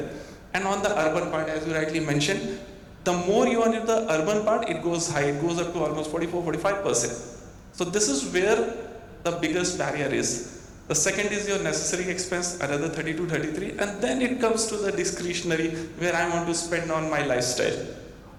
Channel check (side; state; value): both; identical; correlation 1.00